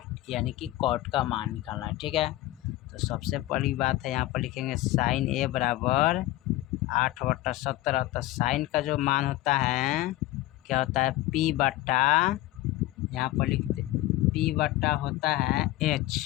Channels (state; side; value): quieter; right; 16.8 dB